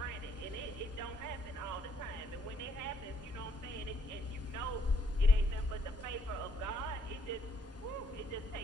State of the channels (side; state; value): both; normal; correlation 0.70